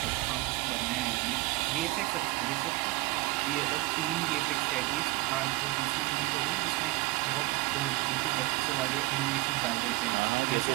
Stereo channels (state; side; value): quieter; left; 21.8 dB